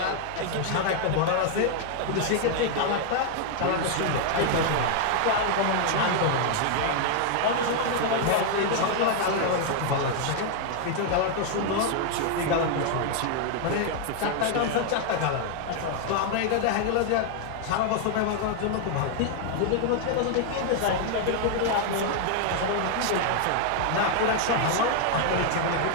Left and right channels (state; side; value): different; both; correlation 0.00